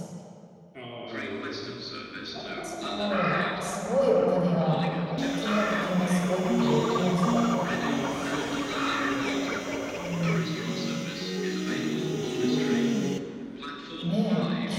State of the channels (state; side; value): identical; both; correlation 1.00